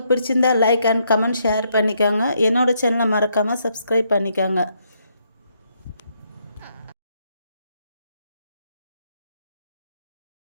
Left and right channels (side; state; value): both; inverted; correlation -0.75